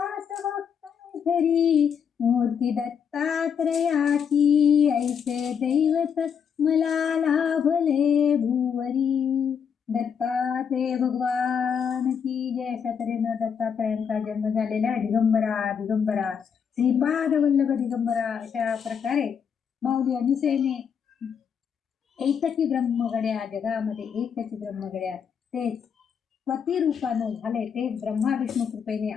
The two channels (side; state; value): right; quieter; 7.3 dB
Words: घरी मूर्ती दत्तात्रयाची ऐसे दैवत मला लाभले भुवरी. दत्तात्रय भगवान की जय. अशा तऱ्हेनं दत्तात्रयांचा जन्म झालेला आहे. दिगंबरा दिगंबरा श्रीपाद वल्लभ दिगंबरा अशा प्रकारे माऊली अनुसेने एकची ब्रह्मगड्या जगामध्ये एकची ब्रह्मगड्या ते पती रूपानं झाले, ते ब्रह्मा विष्णू कृपेने